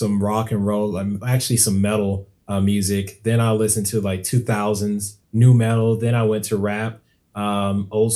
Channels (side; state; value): both; identical; correlation 1.00